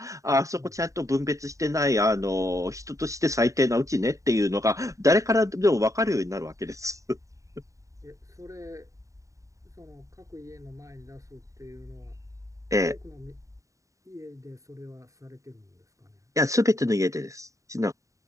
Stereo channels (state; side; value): late; left; 0.16 ms